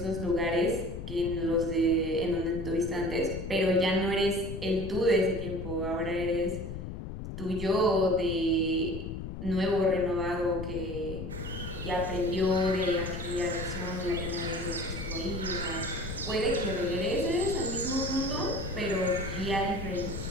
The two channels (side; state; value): left; noise; rumble, 7 dB below the sound